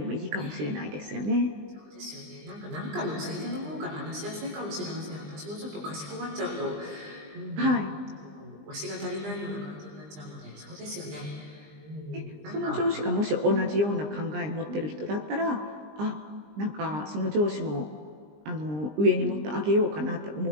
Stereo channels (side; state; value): left; late; 20 ms